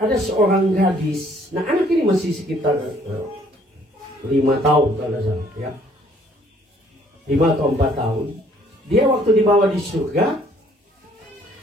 ada seorang gadis. Nah, anak ini masih sekitar 5 tahun kalau salah, ya. 5 atau 4 tahun. Dia waktu dibawa di surga,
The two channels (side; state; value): both; normal; correlation 0.61